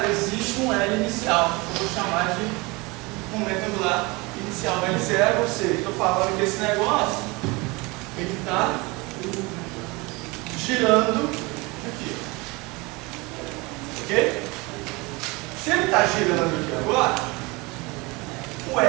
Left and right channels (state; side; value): quieter; left; 25.2 dB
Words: existe um L inicial. Eu vou chamar de momento angular inicial L0, ou seja, estou falando que esse negócio ele está girando aqui. Ok? Se ele está girando aqui agora, o